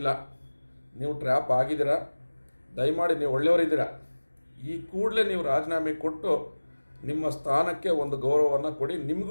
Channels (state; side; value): inverted; both; correlation -1.00